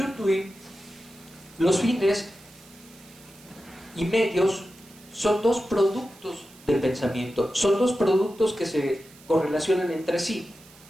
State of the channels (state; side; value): noise; right; hiss, 24 dB below the sound